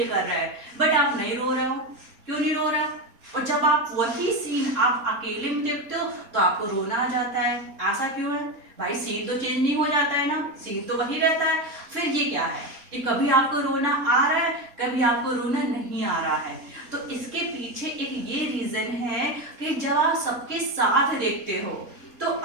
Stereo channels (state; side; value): late; left; 3.6 ms